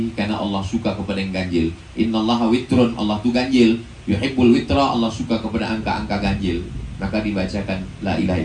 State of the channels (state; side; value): identical; both; correlation 1.00